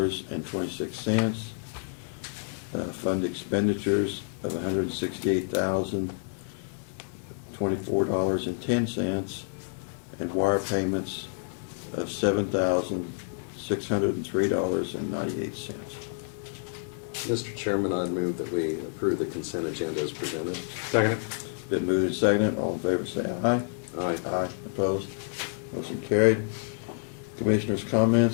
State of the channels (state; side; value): silent; right; digital silence